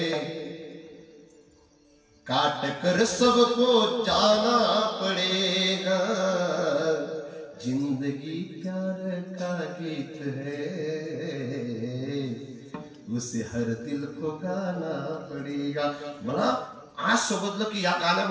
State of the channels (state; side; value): identical; both; correlation 1.00